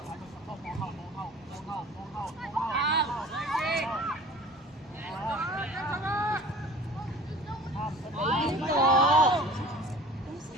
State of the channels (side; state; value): both; normal; correlation 0.45